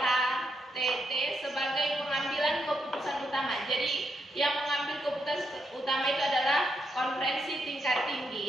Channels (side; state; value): both; normal; correlation 0.80